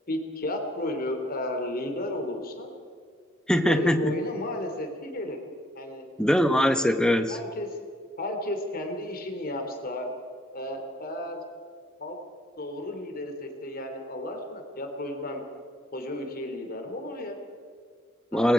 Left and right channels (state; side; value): normal; both; correlation 0.66